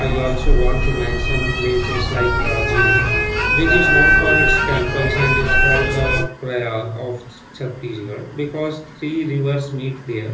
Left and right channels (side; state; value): both; identical; correlation 1.00